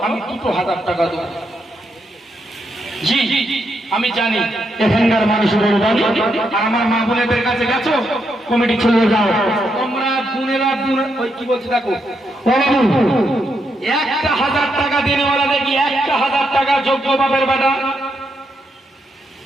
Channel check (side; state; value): both; normal; correlation 0.80